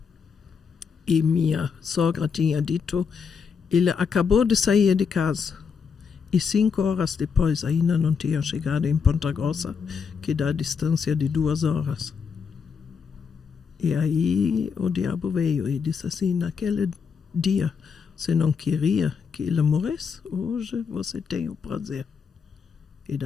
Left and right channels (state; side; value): quieter; right; 6.1 dB